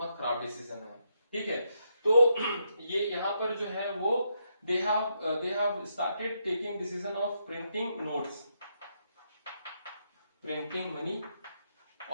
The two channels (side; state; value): both; inverted; correlation -0.80